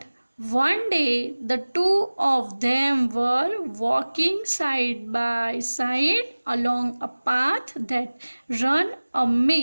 one day the two of them were walking side by side along a path that ran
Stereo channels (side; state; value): both; inverted; correlation -1.00